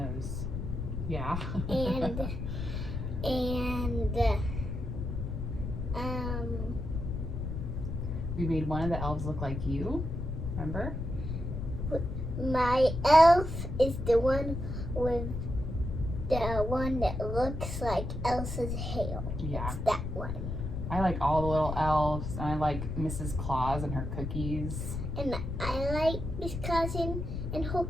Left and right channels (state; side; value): noise; left; rumble, 4 dB below the sound